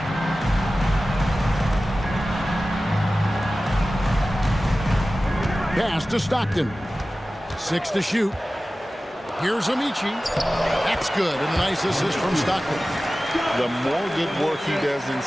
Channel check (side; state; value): both; normal; correlation 0.96